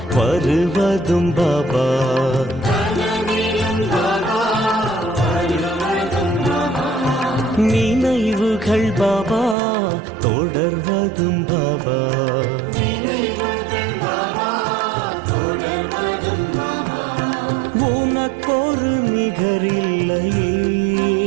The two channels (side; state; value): left; drops out; at 9.6 s